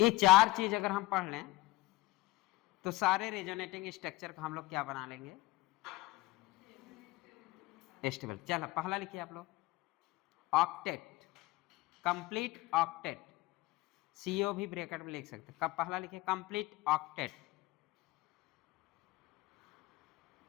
चार चीज अगर हम पढ़ लें तो सारे रेजोनेटिंग स्ट्रक्चर का हम लोग क्या बना लेंगे, स्टेबल। चलो पहला लिखिए आप लोग, ऑक्टेट, कंप्लीट ऑक्टेट, सीओ भी ब्रैकेट में लिख सकते। कब पहला लिखिए कंप्लीट ऑक्टेट,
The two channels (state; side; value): quieter; right; 19.8 dB